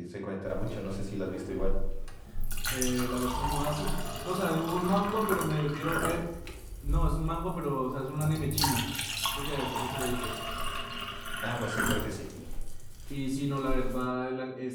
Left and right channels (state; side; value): identical; both; correlation 1.00